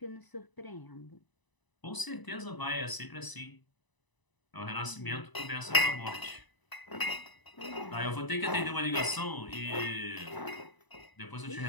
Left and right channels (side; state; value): right; late; 1.0 ms